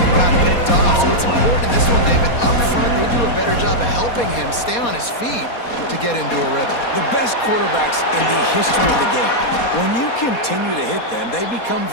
got picked off. So it's important in this one, David, up front, they do a better job of helping him stay on his feet to get into a rhythm. The best quarterbacks in the history of the game, when you continue to hit them, they become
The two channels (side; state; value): right; late; 4.2 ms